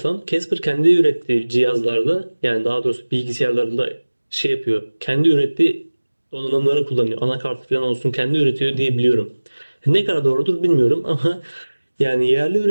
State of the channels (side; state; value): both; inverted; correlation -1.00